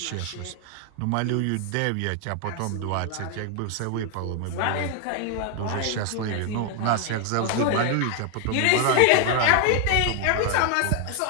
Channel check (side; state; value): both; different; correlation 0.00